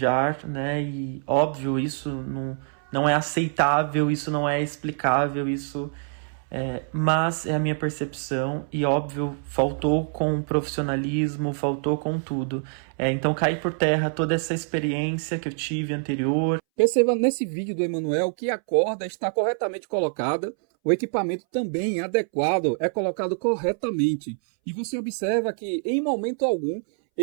né, e óbvio, isso não é aceitável, isso não é explicável, isso mas é a minha percepção e óbvio, faltou com profissionalismo, faltou com tudo. Então cai por terra toda essa experiência que eu tive anterior. Perceba nesse vídeo do Emanuel que a corda está corretamente colocada, o equipamento também adequado é colocado corretamente. E você observa que em momento algum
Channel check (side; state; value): left; silent; 62 dB below the other